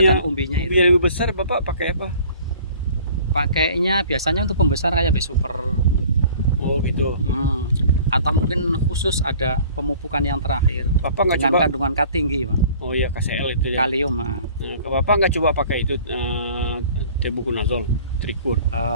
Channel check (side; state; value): both; inverted; correlation -0.49